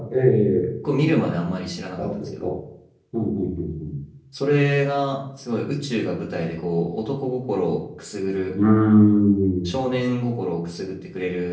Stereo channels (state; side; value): identical; both; correlation 1.00